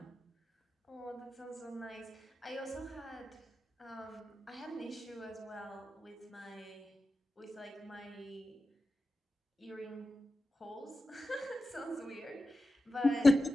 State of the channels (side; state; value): both; normal; correlation 0.93